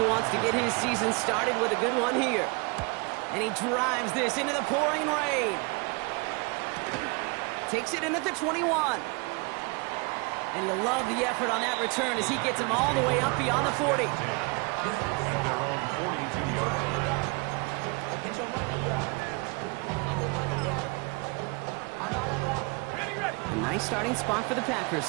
wants to get his season started with a good one here. And he drives this into the pouring rain. Takes it in at the 21. And you'll love the effort on that return as he gets him all the way up beyond the 40. At their own 42-yard line. A nice starting spot for the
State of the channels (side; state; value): left; quieter; 30.5 dB